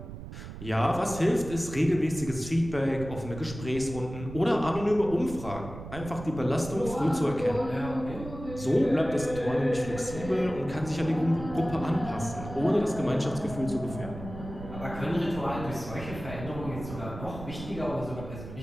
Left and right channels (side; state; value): right; noise; rumble, 11 dB below the sound